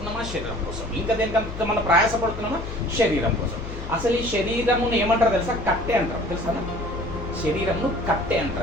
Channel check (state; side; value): noise; left; hum, 9 dB below the sound